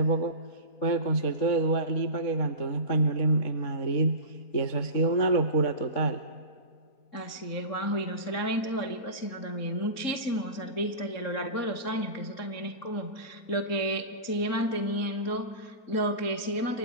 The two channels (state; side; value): late; right; 4.3 ms